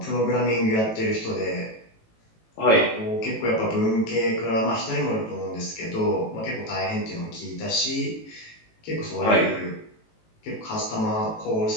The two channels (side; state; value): right; late; 18 ms